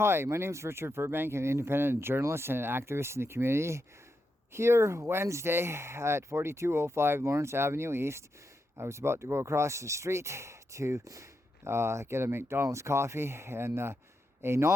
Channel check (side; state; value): both; normal; correlation 0.85